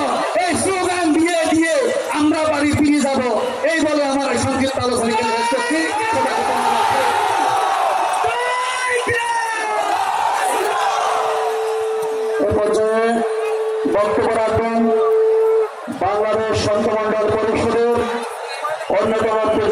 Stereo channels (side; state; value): both; identical; correlation 1.00